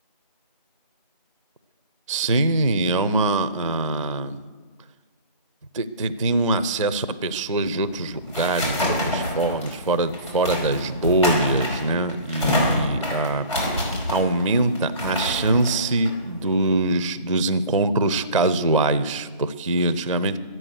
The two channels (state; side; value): inverted; both; correlation -0.43